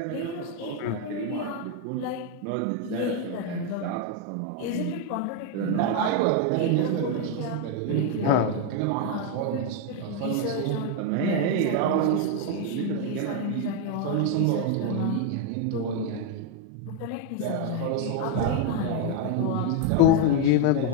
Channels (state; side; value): different; both; correlation 0.01